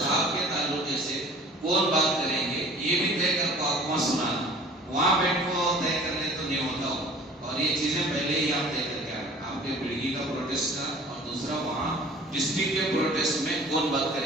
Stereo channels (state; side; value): normal; both; correlation 0.47